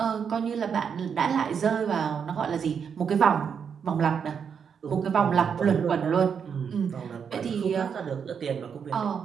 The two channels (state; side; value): quieter; left; 7.0 dB